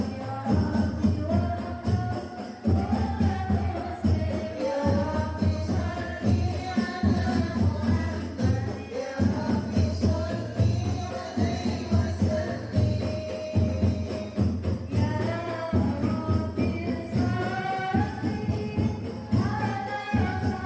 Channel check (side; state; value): both; identical; correlation 1.00